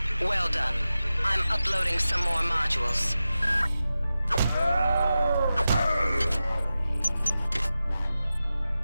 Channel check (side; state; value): both; inverted; correlation -0.94